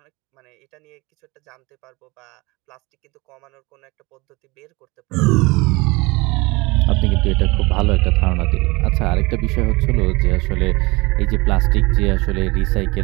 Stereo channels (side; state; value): left; quieter; 23.9 dB